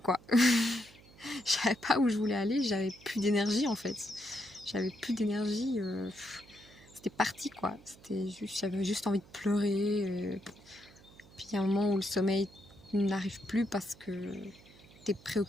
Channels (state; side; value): noise; right; hum, 23 dB below the sound